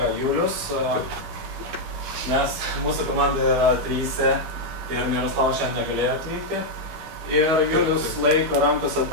Julius. Mes, mūsų komanda yra 3 ir Miroslavas šiandien negalėjo atvykti. Ir Julius laiko rankose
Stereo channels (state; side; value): late; left; 12 ms